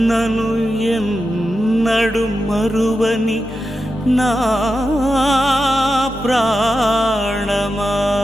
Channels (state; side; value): normal; both; correlation 0.90